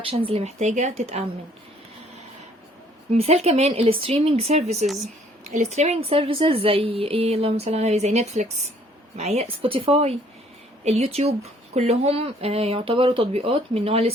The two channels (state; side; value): normal; both; correlation 0.61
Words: اللي محتاجة تتأمن. مثال كمان الستريمينج سيرفيسز. الستريمينج سيرفيسز زي ايه؟ اللهم صل على النبي، زي نتفليكس، معايا سبوتيفاي، اليوتيوب، كلهم يعتبروا تطبيقات من نوع